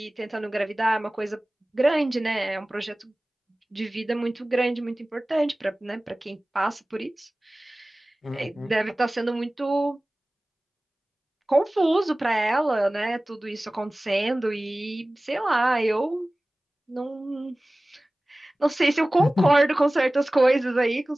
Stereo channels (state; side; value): normal; both; correlation 0.98